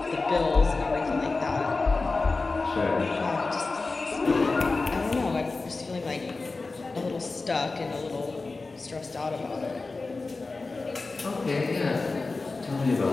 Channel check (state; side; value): quieter; right; 3.7 dB